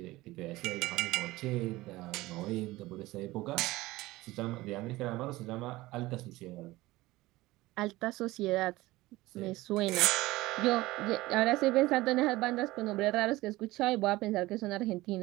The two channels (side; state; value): left; quieter; 18.9 dB